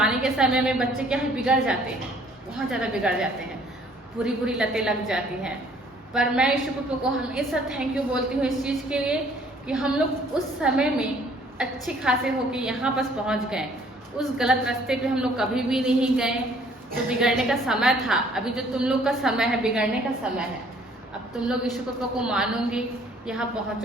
के समय में बच्चे क्या है बिगड़ जाते हैं, बहुत ज़्यादा बिगड़ जाते हैं, बुरी बुरी लतें लग जाती हैं। पर मैं ईशु पप्पा को हमेशा थैंक यू बोलती हूँ इस चीज़ के लिए कि हम लोग उस समय में अच्छे खासे होके यहाँ पर पहुँच गए। उस गलत रास्ते पे हम लोग कभी भी नहीं गए। जो बिगड़ने का समय था, अभी जो तुम लोग का समय है बिगड़ने का समय है। अब तुम लोग ईशु पप्पा को मानोगे, यहाँ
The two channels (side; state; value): both; normal; correlation 0.59